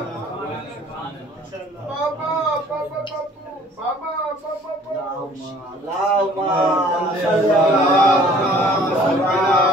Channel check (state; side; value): normal; both; correlation 0.54